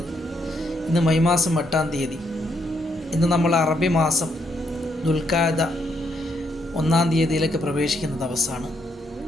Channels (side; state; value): both; normal; correlation 0.75